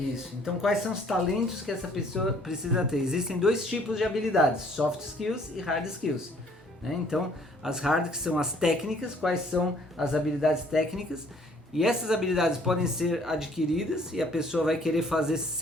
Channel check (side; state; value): both; normal; correlation 0.60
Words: Então, quais são os talentos que essa pessoa precisa ter? Existem dois tipos de habilidades, soft skills e hard skills. Né? Então, as hard, que são as técnicas, quais são as habilidades técnicas? E essas habilidades podem ser adquiridas e a pessoa vai querer fazer